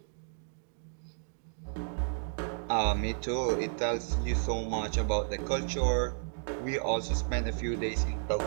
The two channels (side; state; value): left; silent; digital silence